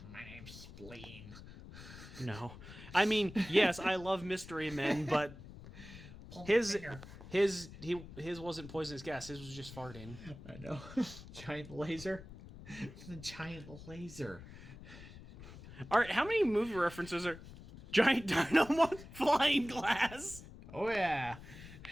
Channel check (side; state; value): left; noise; rumble, 15 dB below the sound